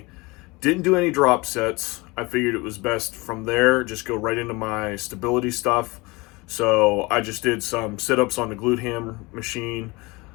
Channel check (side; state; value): right; quieter; 24.4 dB